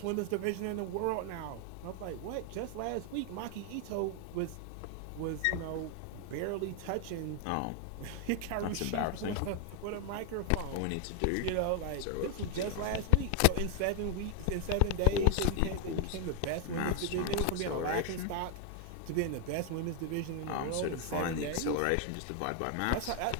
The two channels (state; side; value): different; both; correlation 0.01